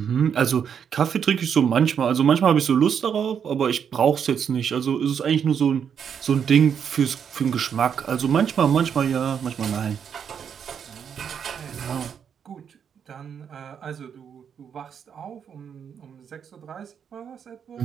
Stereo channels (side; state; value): left; quieter; 7.7 dB